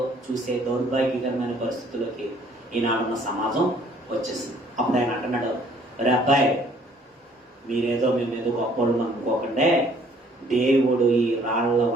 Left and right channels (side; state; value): both; normal; correlation 0.59